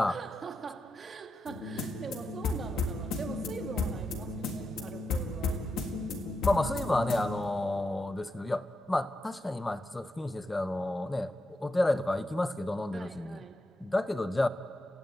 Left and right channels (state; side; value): normal; both; correlation 0.86